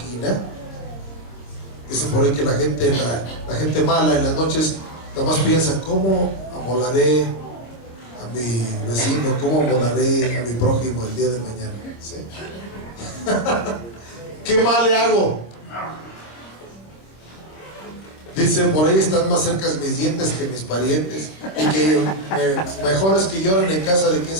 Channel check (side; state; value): right; late; 26 ms